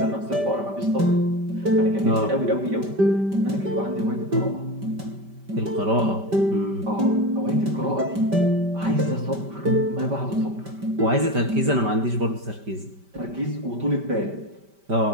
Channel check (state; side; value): late; left; 5.1 ms